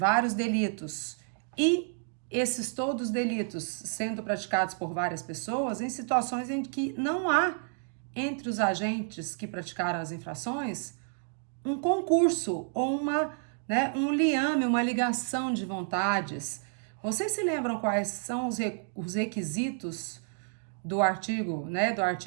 delitos e esses todos delitos sendo praticados por várias pessoas em situações em que não há entre os agentes que praticaram as infrações um concurso ou um liame, uma ligação de vontades. Vocês se lembram quais são os requisitos do artigo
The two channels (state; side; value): silent; left; 58 dB below the other